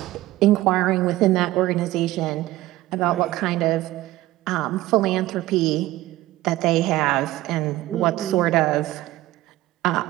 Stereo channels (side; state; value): left; quieter; 16.7 dB